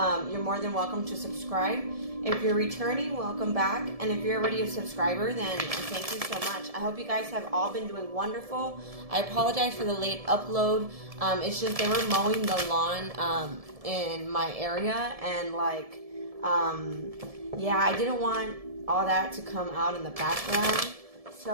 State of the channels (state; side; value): late; left; 1.7 ms